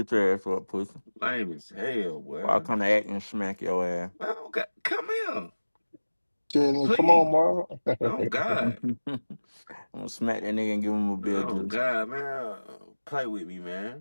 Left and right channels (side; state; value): both; inverted; correlation -1.00